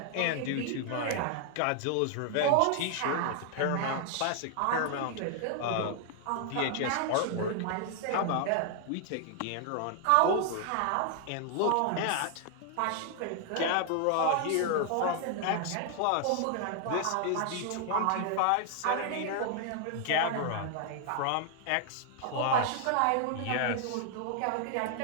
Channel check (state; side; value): different; both; correlation 0.00